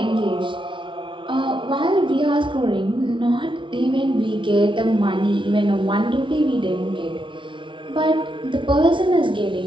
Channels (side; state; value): left; late; 0.24 ms